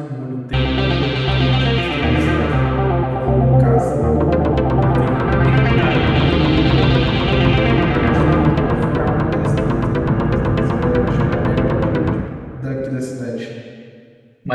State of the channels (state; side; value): identical; both; correlation 1.00